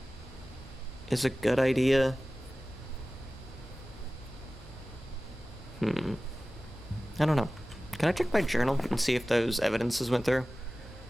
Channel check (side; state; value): both; normal; correlation 0.97